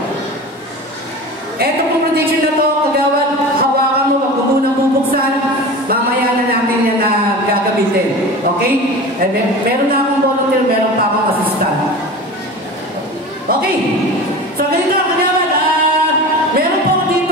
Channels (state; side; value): normal; both; correlation 0.33